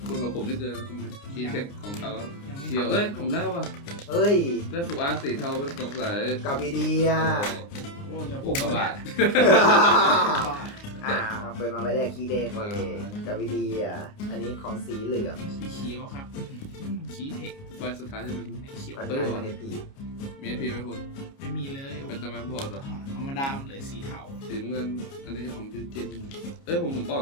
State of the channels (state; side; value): late; right; 29 ms